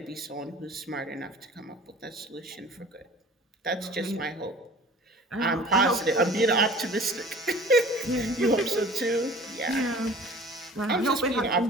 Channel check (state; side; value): normal; both; correlation 0.45